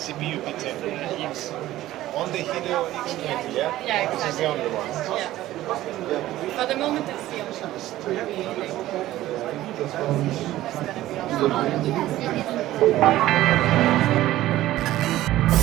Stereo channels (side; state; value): left; quieter; 15.1 dB